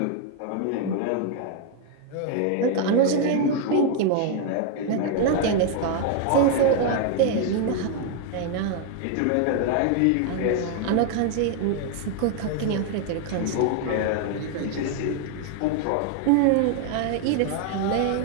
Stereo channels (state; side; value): different; both; correlation 0.00